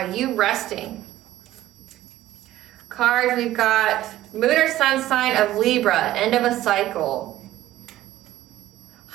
you resting. Cards, we've got Moon or Sun sign of Libra, end of a cycle.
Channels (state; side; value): quieter; left; 14.6 dB